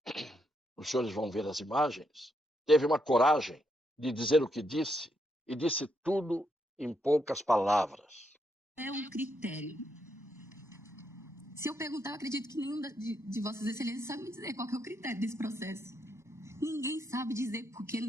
os senhores vão ver as imagens, teve uma coragem de dizer o que disse e disse tudo em poucas palavras. É um critério. Se eu perguntar, eu acredito que nenhum de Vossas Excelências sabe me dizer qual que é o critério desse processo. Ninguém sabe dizer porque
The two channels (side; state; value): both; normal; correlation 0.78